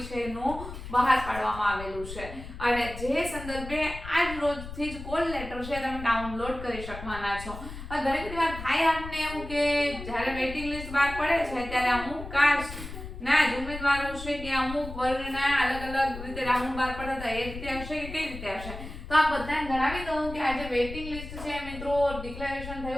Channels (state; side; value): noise; left; rumble, 11 dB below the sound